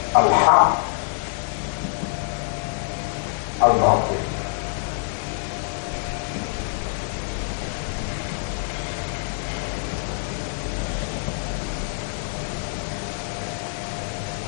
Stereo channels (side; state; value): right; silent; 62 dB below the other